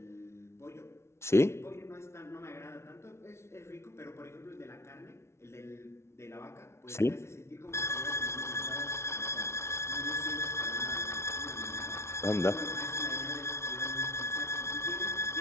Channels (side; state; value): right; late; 0.13 ms